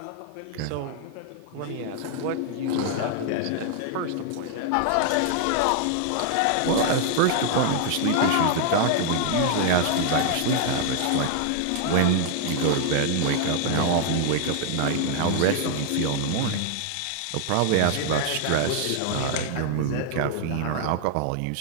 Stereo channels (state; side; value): different; both; correlation 0.00